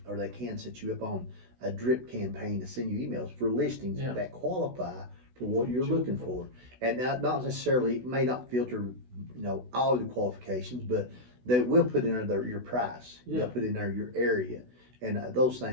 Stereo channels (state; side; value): late; left; 16 ms